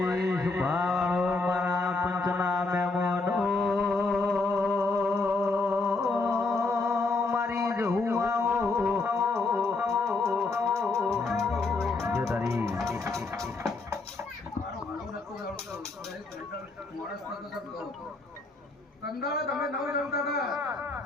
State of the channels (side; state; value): right; quieter; 3.6 dB